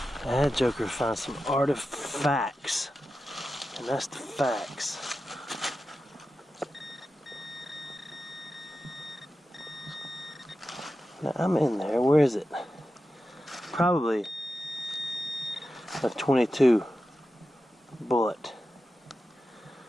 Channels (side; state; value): both; normal; correlation 0.92